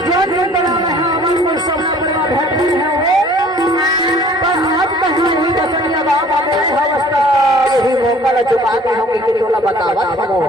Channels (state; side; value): normal; both; correlation 0.52